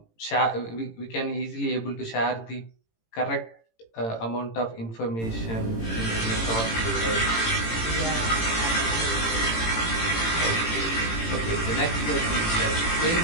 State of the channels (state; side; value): late; right; 18 ms